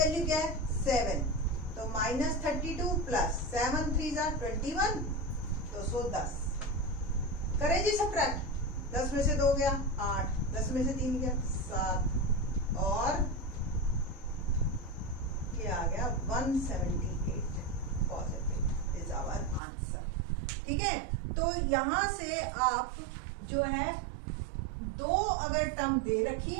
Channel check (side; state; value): left; drops out; at 19.6 s